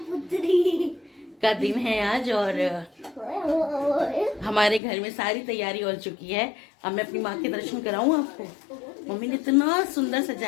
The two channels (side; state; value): right; drops out; at 4.8 s